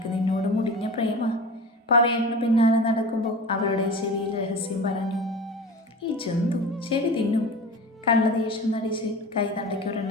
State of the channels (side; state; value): both; normal; correlation 0.34